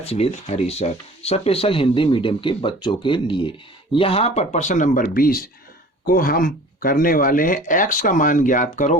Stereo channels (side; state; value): both; normal; correlation 0.45